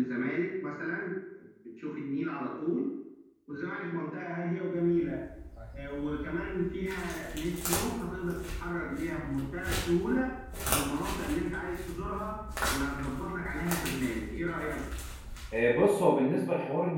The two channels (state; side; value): identical; both; correlation 1.00